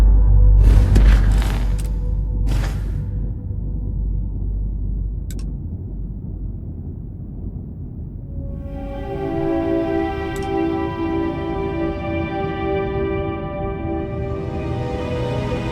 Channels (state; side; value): identical; both; correlation 1.00